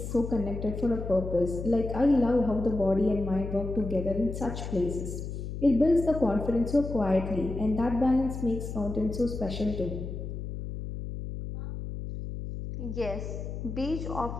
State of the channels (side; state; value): left; noise; hum, 7 dB below the sound